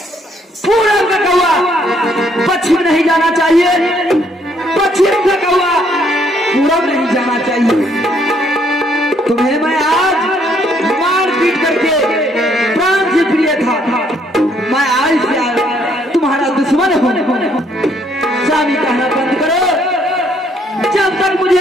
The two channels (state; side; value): normal; both; correlation 0.68